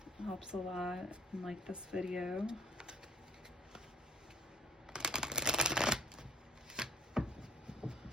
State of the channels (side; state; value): both; normal; correlation 0.52